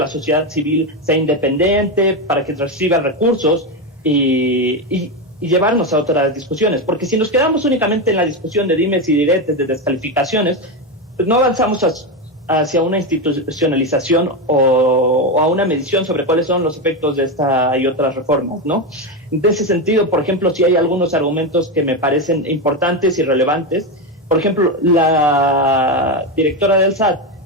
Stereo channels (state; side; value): normal; both; correlation 0.12